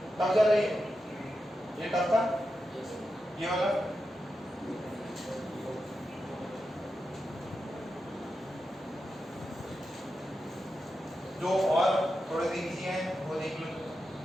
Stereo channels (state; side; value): normal; both; correlation 0.89